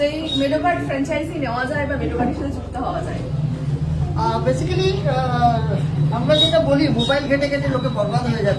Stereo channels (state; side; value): identical; both; correlation 1.00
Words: এই মেডোকার্ড ফ্র্যাঞ্চাইজি নেওয়া যায় বা মেডোকার্ডের সাথে যুক্ত হওয়া যায়? বেসিক্যালি আমরা যেটা বলি, মোবাইল ঘেটে ঘেটে লোকে বরবাদ হয়ে